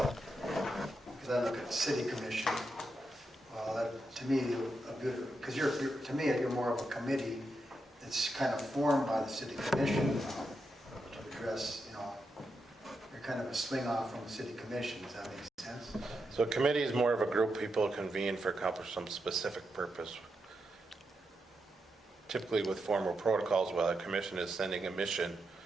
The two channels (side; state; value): both; normal; correlation 0.85